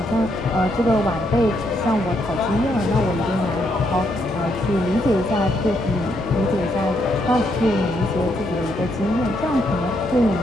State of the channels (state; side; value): normal; both; correlation 0.76